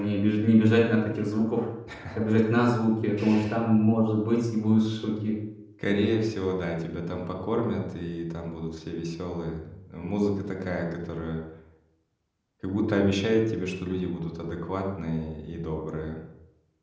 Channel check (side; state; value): both; identical; correlation 1.00